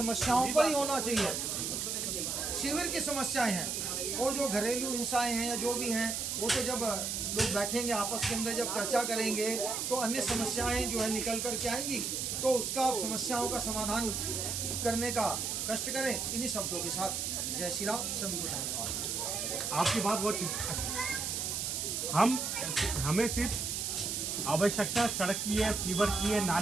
पर ही होना चाहिए। शिविर की समस्याएं हैं, और जो घरेलू हिंसाएं हैं या जो भी हैं वो तो जब लोग बैठेंगे आपस के अंदर, जब चर्चा करेंगे तो अन्य समस्याएं जो है निकल कर के आएंगी, तो उसका आप समस्याओं का समाधान करने का कष्ट करें। इन्हीं शब्दों के साथ जय श्री राम, सभी को धन्यवाद। आपकी बात बहुत हमें सिर्फ आवश्यकता सड़क की है, सीवर की है,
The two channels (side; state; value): right; noise; hiss, 1 dB below the sound